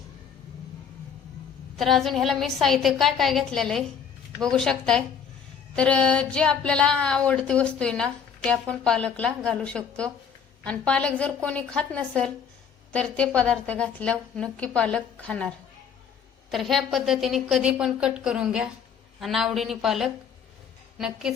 तर अजून ह्याला मी साहित्य काय काय घेतलेलं आहे बघू शकताय। तर जे आपल्याला आवडती वस्तू आहे ना ते आपण पालकला घालू शकतो, आणि पालक जर कोणी खात नसेल तर ते पदार्थ घातल्यावर नक्की पालक खाणार। तर ह्या पद्धतीने कधी पण कट करून घ्या आणि आवडीने पालक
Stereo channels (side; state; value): right; quieter; 7.1 dB